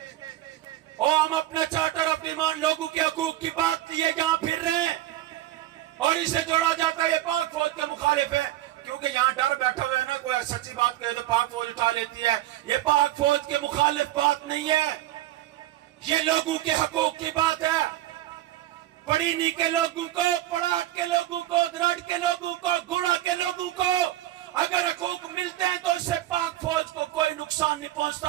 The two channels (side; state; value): left; quieter; 14.4 dB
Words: اور ہم اپنا چارٹر آف ڈیمانڈ لوگوں کے حقوق کی بات لیے یہاں پھر رہے ہیں, اور اسے جوڑا جاتا ہے یہ پاک فوج کے مخالف ہے. کیونکہ یہاں ڈر بیٹھا ہوا ہے نا, کوئی سچی بات کہے تو پاک فوج اٹھا لیتی ہے. یہ پاک فوج کے مخالف بات نہیں ہے, یہ لوگوں کے حقوق کی بات ہے. پڑینی کے لوگوں کو, پڑاٹ کے لوگوں کو, درڑ کے لوگوں کو, گوڑا کے لوگوں کو اگر حقوق ملتے ہیں تو اس سے پاک فوج کو کوئی نقصان نہیں